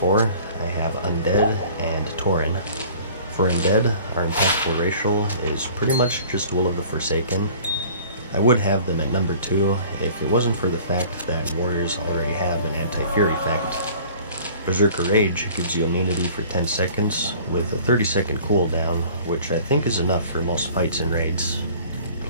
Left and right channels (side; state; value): both; inverted; correlation -0.48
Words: I have Undead and Tauren. For Undead, our impactful racial is pretty much just Will of the Forsaken. I would have them at number 2 if it wasn't for the fact that warriors already have an anti-fear effect. Berserker Rage gives you immunity for 10 seconds with a 30-second cooldown, which I think is enough for most fights and raids.